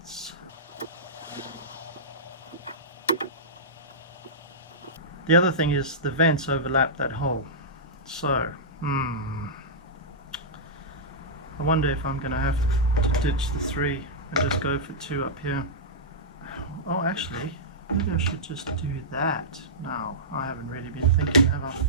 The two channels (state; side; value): normal; both; correlation -0.14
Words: The other thing is the vents overlap that hole. So, I wonder if I'm going to have to ditch the 3 and just go for 2 up here. Oh, actually, maybe I should just do that now. I haven't really been thinking, have I?